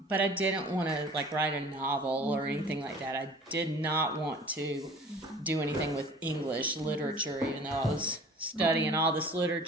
But I didn't want to like write a novel or anything like that. I did not want to do anything with English literature, even though I was studying all this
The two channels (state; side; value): normal; both; correlation 0.46